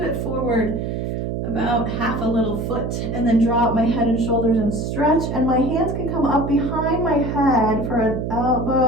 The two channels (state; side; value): noise; right; hum, 3 dB below the sound